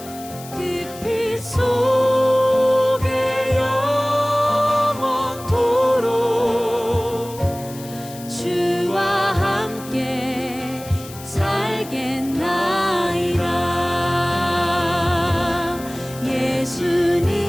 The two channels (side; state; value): left; noise; hiss, 17 dB below the sound